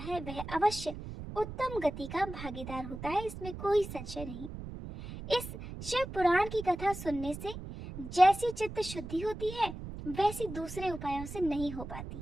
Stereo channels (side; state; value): right; noise; rumble, 10 dB below the sound